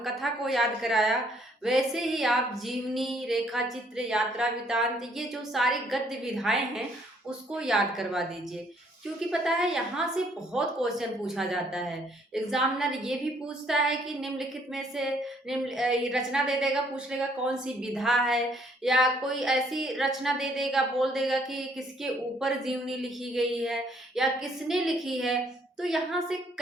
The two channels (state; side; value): normal; both; correlation 0.65